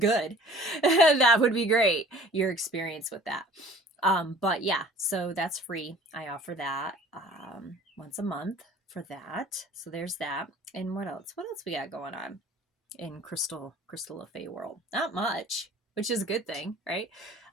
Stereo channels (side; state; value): both; normal; correlation 0.49